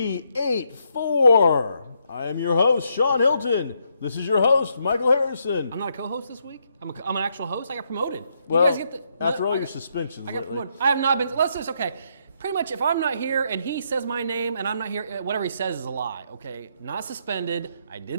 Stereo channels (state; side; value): inverted; both; correlation -0.76